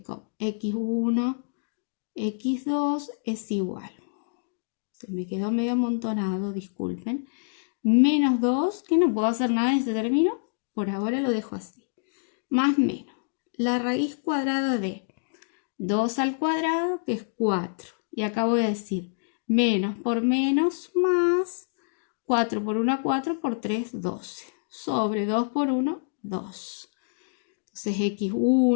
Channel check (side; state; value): right; silent; digital silence